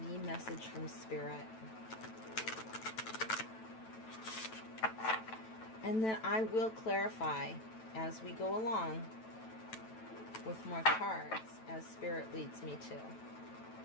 message from Spirit. And then I will clarify as we go along with more cards as Spirit leads me to.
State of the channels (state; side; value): late; right; 9.1 ms